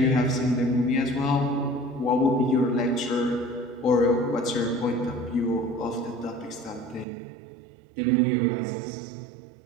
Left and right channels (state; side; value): drops out; left; at 7.1 s